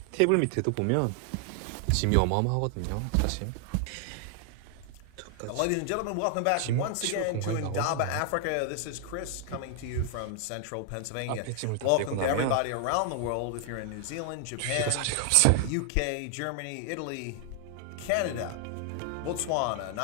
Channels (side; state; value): both; different; correlation 0.00